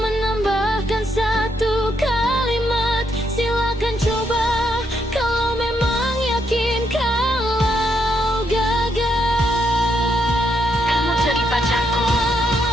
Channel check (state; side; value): normal; both; correlation 0.77